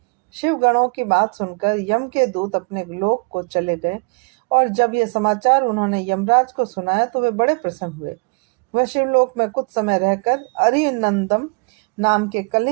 शिव गणों की बात सुनकर यम के दूत अपने लोक को चले गए और जब यह समाचार उन्होंने यमराज को सुनाया तो वे बड़े प्रसन्न हुए। वह शिवलोक में कुछ समय रहकर अरिनंदम नाम के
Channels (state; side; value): quieter; left; 32.4 dB